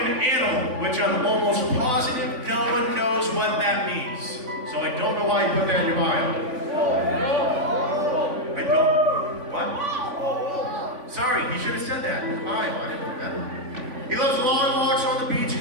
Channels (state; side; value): late; left; 3.5 ms